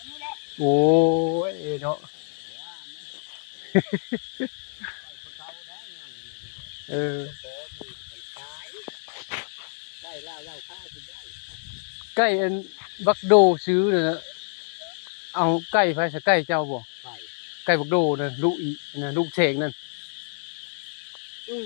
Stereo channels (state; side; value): silent; right; digital silence